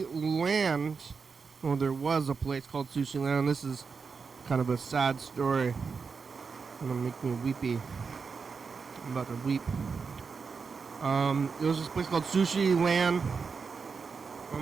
Land. Well, there was a place called Sushi Land. This is kind of a sad story. It's gonna make me weepy. I'm about to weep. There was this place called Sushi Land.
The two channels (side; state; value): left; quieter; 5.3 dB